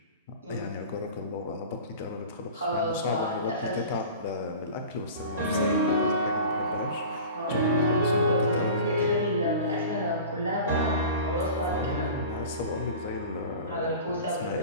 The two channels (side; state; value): both; inverted; correlation -0.37